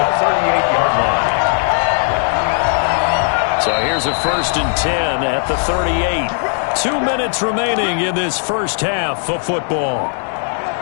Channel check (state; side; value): silent; right; 65 dB below the other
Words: 38-yard line. So here's a 1st and 10 at the 38. 2 minutes remaining in this first half of football.